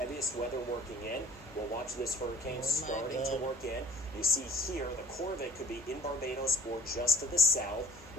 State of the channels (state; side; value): noise; left; hum, 21 dB below the sound